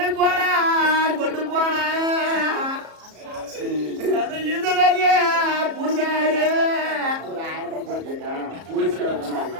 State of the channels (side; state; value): left; late; 34 ms